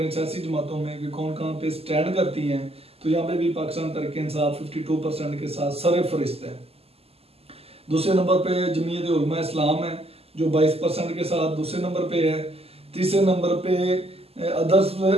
सियासी जमातों में कि कौन कहाँ पे स्टैंड करती हैं, तो यहाँ पे भी पाकिस्तान तहरीक इंसाफ 52% के साथ सरफहरिस्त है। दूसरे नंबर पे जमीयत उलमा इस्लाम है जो 22% के साथ दूसरे नंबर पे है। तीसरे नंबर पे अदर्स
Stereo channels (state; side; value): late; left; 0.29 ms